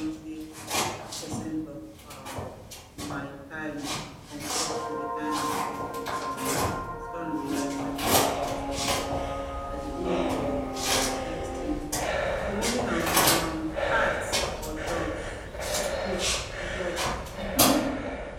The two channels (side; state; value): both; identical; correlation 1.00